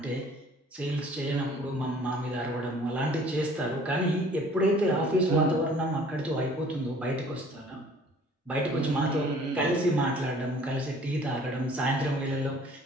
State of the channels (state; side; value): normal; both; correlation 0.53